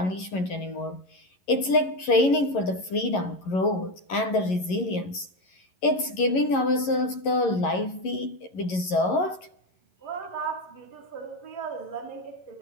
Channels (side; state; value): right; late; 11 ms